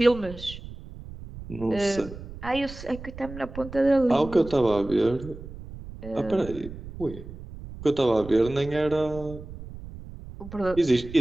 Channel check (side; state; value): right; noise; rumble, 13 dB below the sound